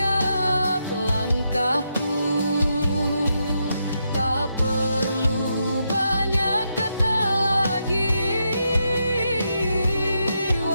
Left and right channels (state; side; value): inverted; both; correlation -0.82